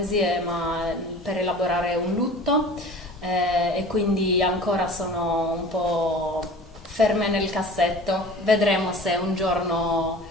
ma per elaborare un lutto, e quindi ancora sono un po' ferme nel cassetto. Vedremo se un giorno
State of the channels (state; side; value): normal; both; correlation 0.41